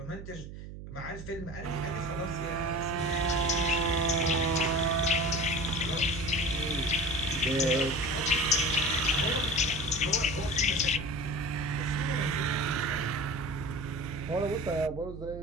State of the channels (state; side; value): noise; right; hum, 11 dB below the sound